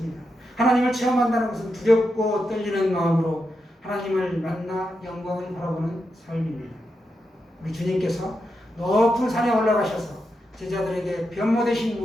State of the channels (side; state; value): both; normal; correlation 0.86